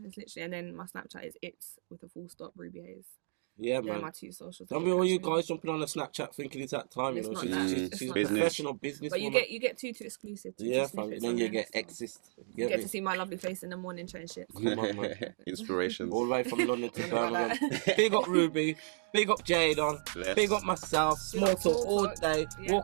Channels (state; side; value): silent; left; digital silence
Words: It's literally, and then my Snapchat is it's with a full stop. Rubyxhaze. Yeah, They're man. my 2 socials. Don't be all you guys jumping on the Snapchat thinking it's that time, She's professional business. But you get 2 exclusive. Yeah, fam. Then you get exist. You get to see my lovely face in the morning trying shit. Come on, man. Inspirations. All the way from London to Birmingham. Big up Ruby. Big up Jdon. Big up myself. SmallTalk all day.